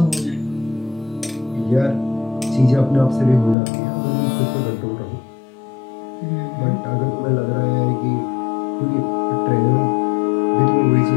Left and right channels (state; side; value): drops out; right; at 3.6 s